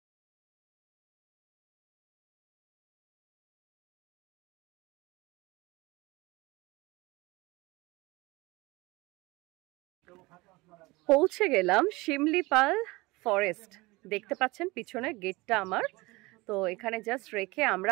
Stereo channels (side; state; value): left; quieter; 22.6 dB